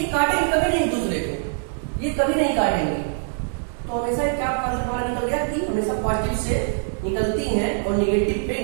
काटेंगे कभी नहीं एक दूसरे को, ये कभी नहीं काटेंगे। तो हमेशा क्या हमारा निकल गया कि हमेशा पॉजिटिव से निकलती हैं और निगेटिव पे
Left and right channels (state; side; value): silent; left; digital silence